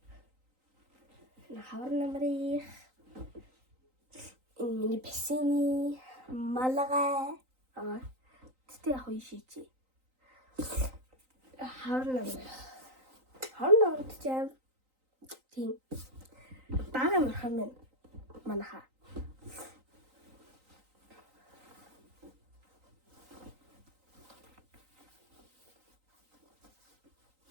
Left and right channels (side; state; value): left; late; 3.9 ms